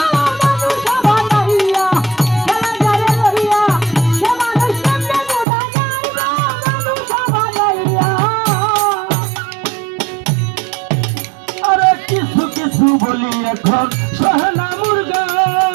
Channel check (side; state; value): left; drops out; at 5.5 s